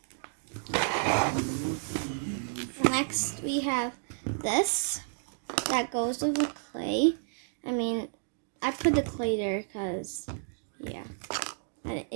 Next we have this that goes with the clay. I mean, I put the clay there because, yeah,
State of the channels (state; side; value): silent; left; digital silence